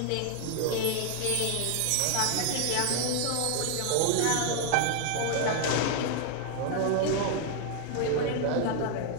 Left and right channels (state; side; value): different; both; correlation 0.00